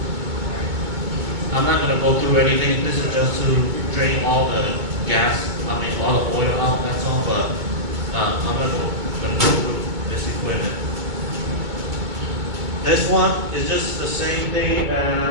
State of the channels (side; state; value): left; late; 2.2 ms